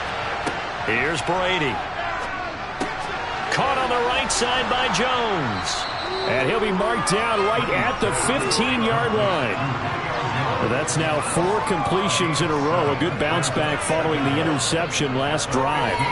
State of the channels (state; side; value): identical; both; correlation 1.00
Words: Here's Brady. Caught on the right side by Jones. And he'll be marked down right at the 15-yard line. Well, that's now 4 completions in a row. A good bounce back following the interception last drive.